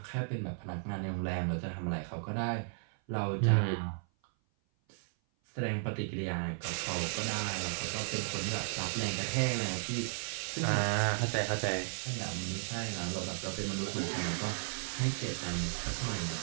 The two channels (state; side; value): silent; left; 55 dB below the other